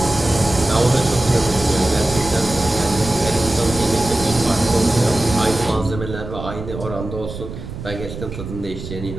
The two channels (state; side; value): noise; right; rumble, 10 dB below the sound